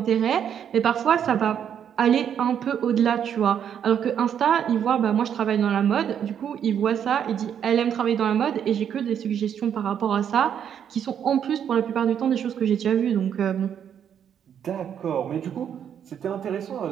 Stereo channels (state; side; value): quieter; left; 8.7 dB